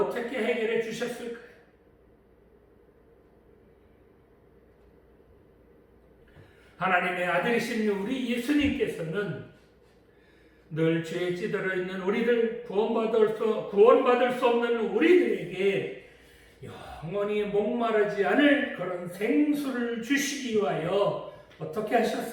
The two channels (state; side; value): identical; both; correlation 1.00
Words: 해결해 주셨을까요? 하나님의 아들이신 우리 예수님께서는 늘 죄에 찌들어 있는 우리들, 구원받을 수 없는 우리들에게 영원히 목마르지 않을 그런 생수를 주시기 위하여 어떻게